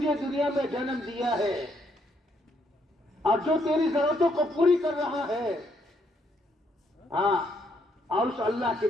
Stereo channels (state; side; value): normal; both; correlation 0.73